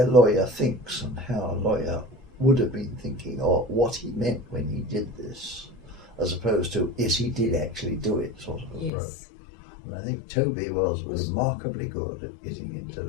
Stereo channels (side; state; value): right; drops out; at 8.9 s